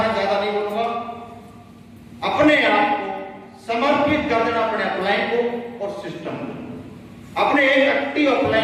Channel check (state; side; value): identical; both; correlation 1.00